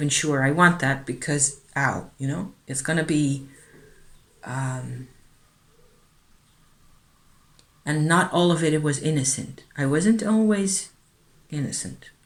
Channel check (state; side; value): identical; both; correlation 1.00